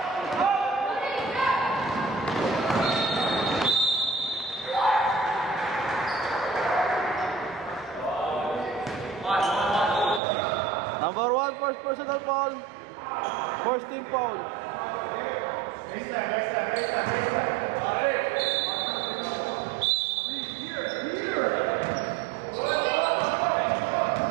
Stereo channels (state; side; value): drops out; left; at 10.2 s